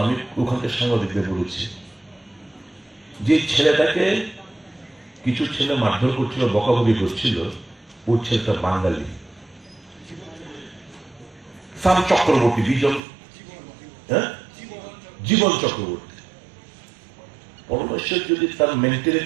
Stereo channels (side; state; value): left; drops out; at 13.0 s